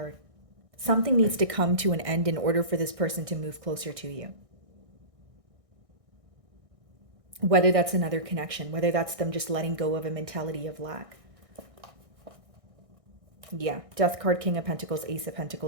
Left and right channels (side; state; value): left; late; 1.6 ms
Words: Something needs to come to an end in order for this person to move closer to you. Whether that's another connection, whether that's them just letting go of a mentality of lack. Yeah, Death card, King of Pentacles, Ace of